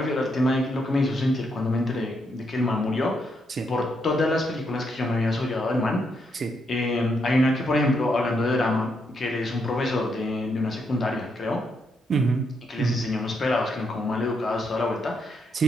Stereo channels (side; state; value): both; normal; correlation 0.78